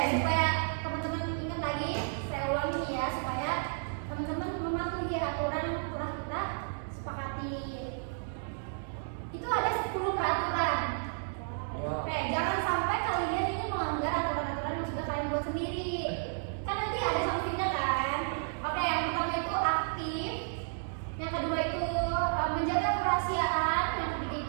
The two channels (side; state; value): left; silent; digital silence